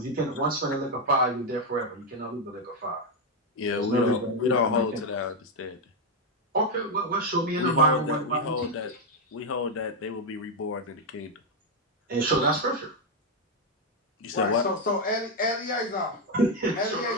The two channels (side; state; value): both; normal; correlation 0.03